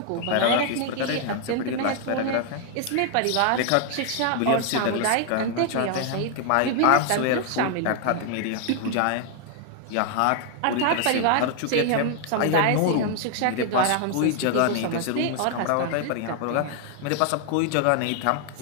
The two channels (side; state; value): both; different; correlation 0.00